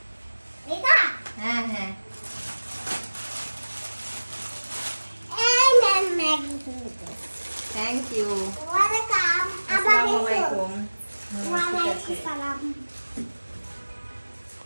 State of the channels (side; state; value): both; inverted; correlation -1.00